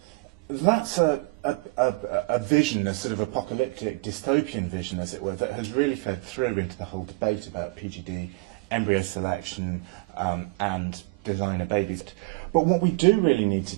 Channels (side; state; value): left; quieter; 25.0 dB